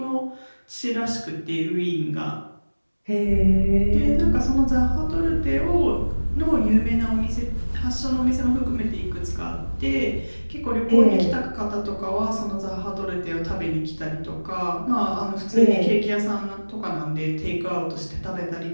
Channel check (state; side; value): inverted; both; correlation -1.00